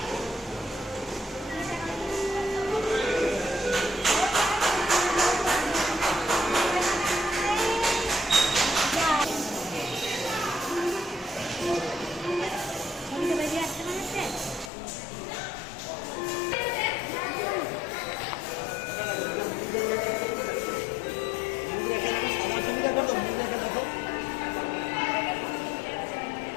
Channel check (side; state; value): right; drops out; at 14.7 s